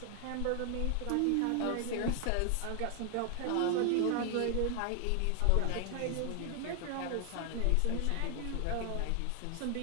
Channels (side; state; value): both; different; correlation 0.00